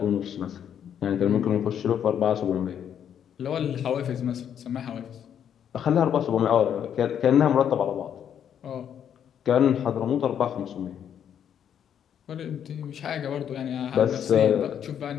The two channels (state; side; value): quieter; right; 9.0 dB